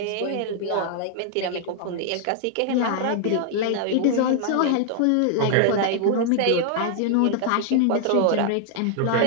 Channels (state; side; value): different; both; correlation 0.00